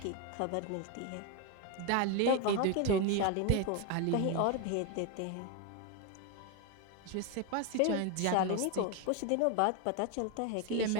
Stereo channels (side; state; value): both; different; correlation 0.02